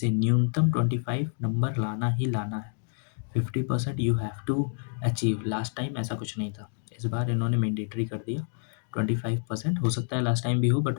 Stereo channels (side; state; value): right; silent; 58 dB below the other